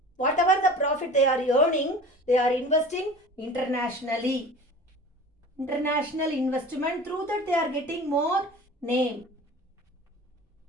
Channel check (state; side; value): normal; both; correlation 0.40